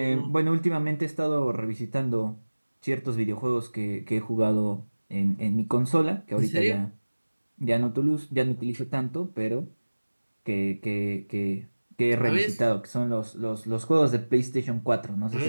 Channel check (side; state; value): both; inverted; correlation -1.00